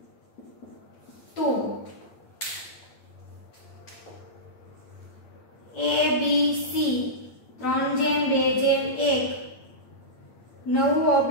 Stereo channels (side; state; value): right; late; 8.7 ms